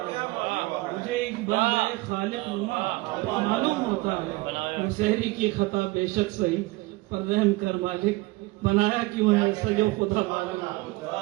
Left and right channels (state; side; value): quieter; left; 21.7 dB